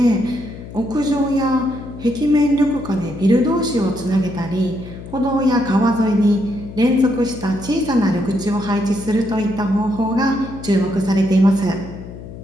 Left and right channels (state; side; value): noise; left; hum, 13 dB below the sound